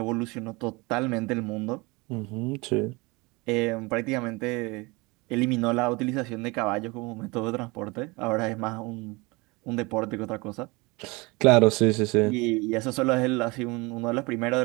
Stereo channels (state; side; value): quieter; left; 25.2 dB